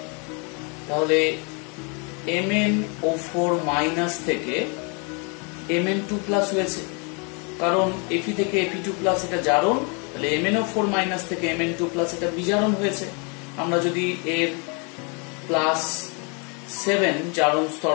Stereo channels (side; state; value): right; quieter; 34.4 dB